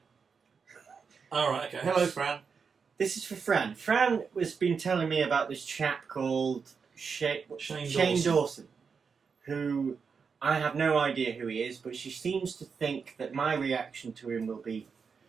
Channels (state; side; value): quieter; left; 5.7 dB